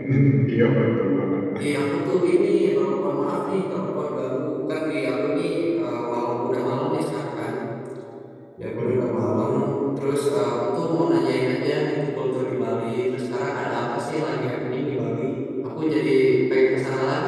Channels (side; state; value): both; identical; correlation 1.00